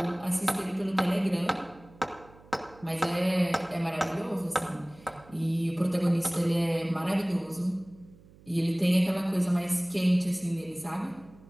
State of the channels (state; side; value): noise; right; hum, 24 dB below the sound